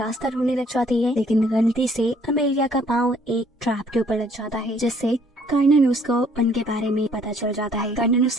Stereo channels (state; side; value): normal; both; correlation 0.62